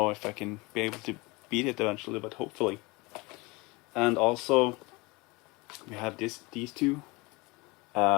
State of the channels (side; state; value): right; quieter; 24.8 dB